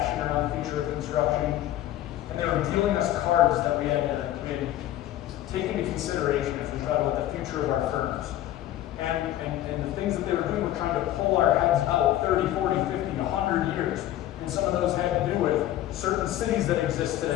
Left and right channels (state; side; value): quieter; right; 13.4 dB